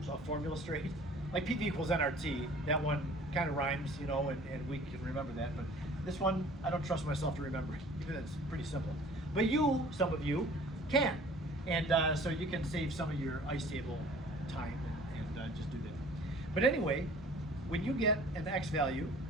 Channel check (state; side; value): normal; both; correlation 0.50